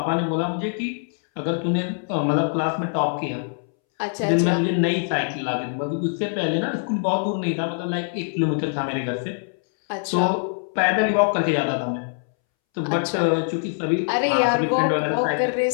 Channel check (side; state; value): right; silent; 63 dB below the other